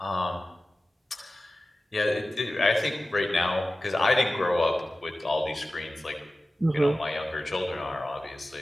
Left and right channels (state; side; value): normal; both; correlation 0.95